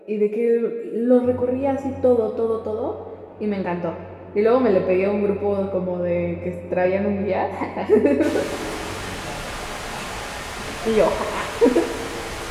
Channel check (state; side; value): identical; both; correlation 1.00